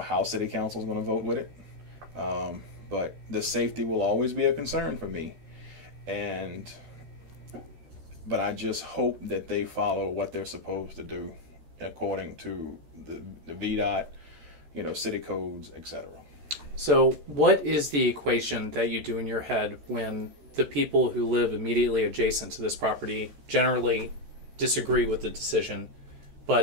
City Council is going to vote with it, but the safety will always be a concern for me, but I just hope that they follow what they're supposed to do according to the VDOT, city codes, etc. So what is the equation that you do in your head when the people who live immediately adjacent to this property generally disagree with the decision,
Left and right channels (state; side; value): late; left; 13 ms